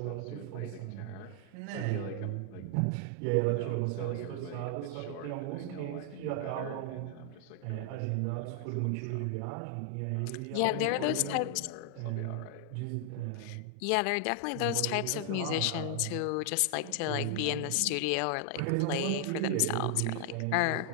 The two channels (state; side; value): different; both; correlation 0.00